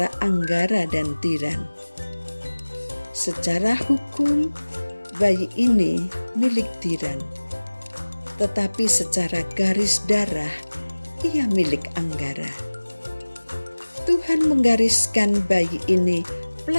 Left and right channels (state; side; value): inverted; both; correlation -1.00